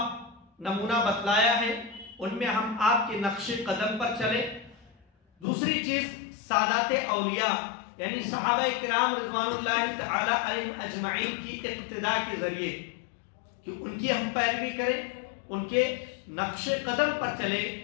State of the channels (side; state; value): right; drops out; at 5.5 s